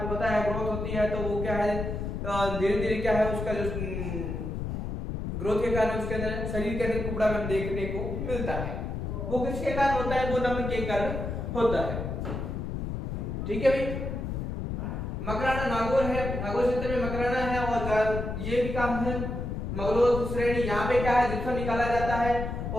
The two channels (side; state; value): left; noise; rumble, 4 dB below the sound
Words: बताया ग्रोथ होती है, तो वो क्या है धीरे धीरे क्या है उसका जो ग्रोथ के कारण उसके अंदर शरीर के अंदर कुबड़ा में देखने को मिलता है। वो किसके कारण होता है, वो नमक के कारण होता है। ठीक है भाई। मकराना नागौर है, नागौर क्षेत्र में मकराना है, और ये भी काम है मगलोद श्रेणी। यहाँ पे क्या है, जिप्सम निकाला जाता है।